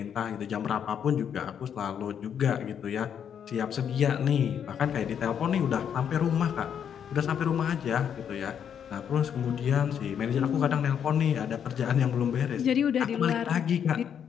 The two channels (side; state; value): right; quieter; 8.3 dB